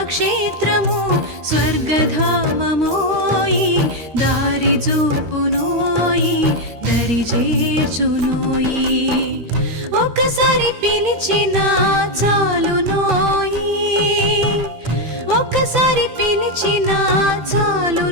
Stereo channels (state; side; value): late; left; 13 ms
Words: క్షేత్రము స్వర్గధామమోయి దారి చూపునోయి దరి చేర్చునోయి ఒక్కసారి పిలిచినా చాలునోయి ఒక్కసారి పిలిచినా